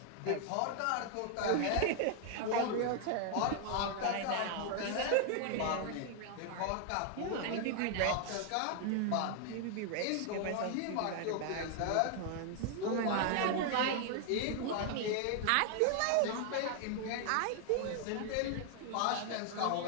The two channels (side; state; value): both; different; correlation 0.00